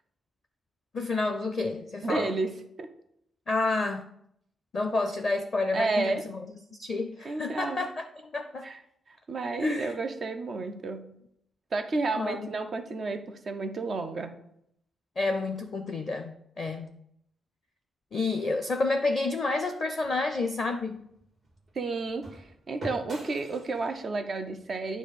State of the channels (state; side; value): normal; both; correlation 0.82